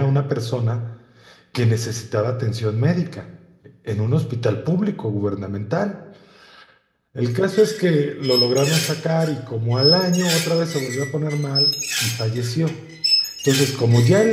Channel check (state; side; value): identical; both; correlation 1.00